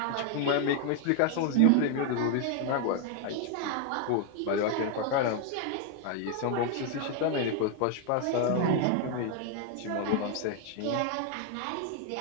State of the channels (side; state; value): both; different; correlation 0.01